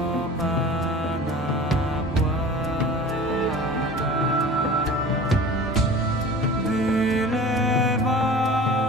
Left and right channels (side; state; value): both; normal; correlation 0.40